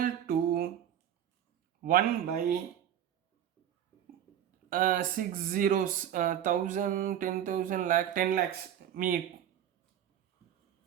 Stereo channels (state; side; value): quieter; left; 10.4 dB